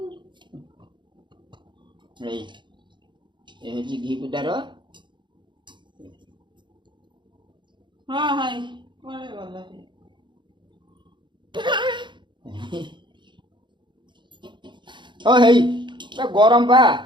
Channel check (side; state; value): left; late; 0.23 ms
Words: ए होची घी पिठा रो हां हाय कोले गला ओ हेई गरम बा